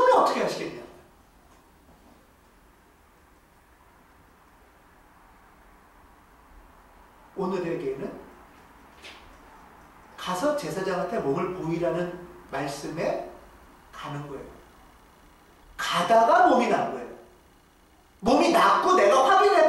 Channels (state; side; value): identical; both; correlation 1.00